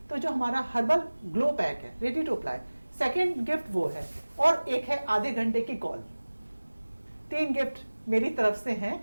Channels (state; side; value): inverted; both; correlation -1.00